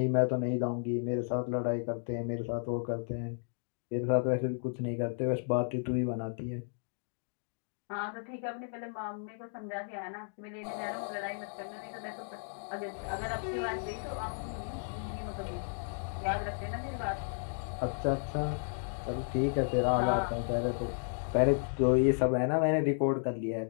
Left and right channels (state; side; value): silent; right; digital silence